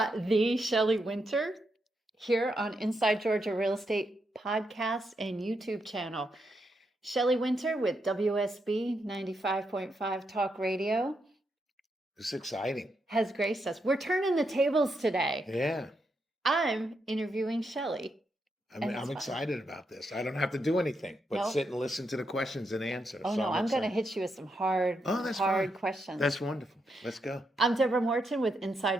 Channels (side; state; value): both; normal; correlation 0.82